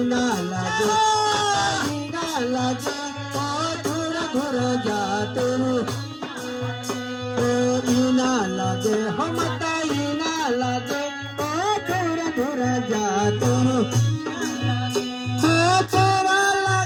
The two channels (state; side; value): identical; both; correlation 1.00